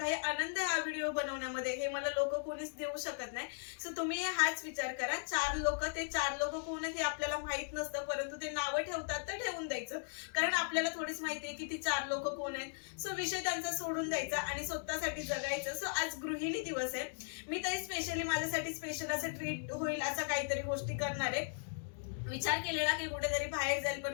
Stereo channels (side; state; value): right; silent; digital silence